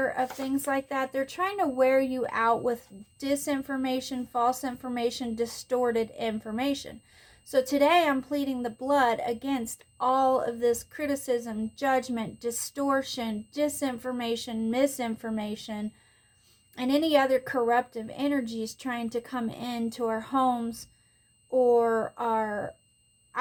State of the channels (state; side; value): identical; both; correlation 1.00